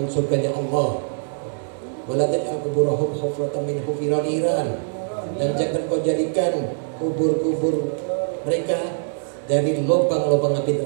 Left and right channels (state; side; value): silent; left; digital silence